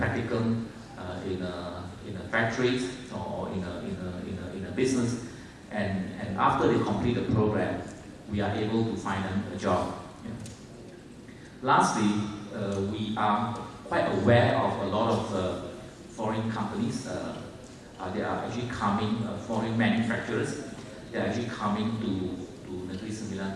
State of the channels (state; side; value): identical; both; correlation 1.00